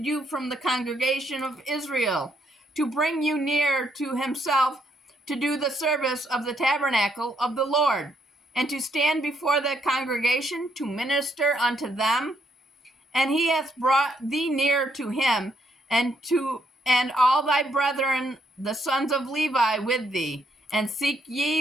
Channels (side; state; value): both; normal; correlation 0.73